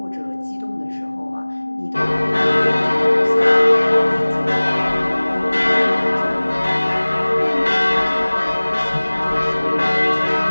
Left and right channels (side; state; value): both; inverted; correlation -1.00